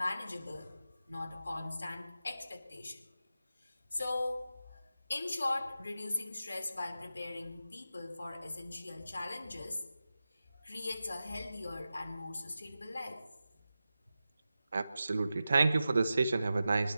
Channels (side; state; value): both; inverted; correlation -0.92